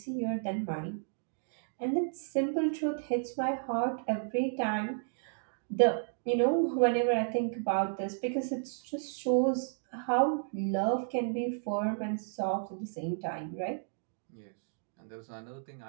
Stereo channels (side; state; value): left; silent; digital silence